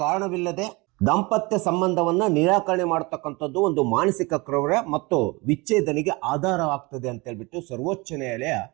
ಕಾರಣವಿಲ್ಲದೆ ದಾಂಪತ್ಯ ಸಂಬಂಧವನ್ನ ನಿರಾಕರಣೆ ಮಾಡತಕ್ಕಂಥದ್ದು ಒಂದು ಮಾನಸಿಕ ಕ್ರೌರ್ಯ ಮತ್ತು ವಿಚ್ಛೇದನೆಗೆ ಆಧಾರವಾಗ್ತದೆ ಅಂತ ಹೇಳ್ಬಿಟ್ಟು ಸರ್ವೋಚ್ಚ ನ್ಯಾಯಾಲಯ,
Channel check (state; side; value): quieter; left; 25.3 dB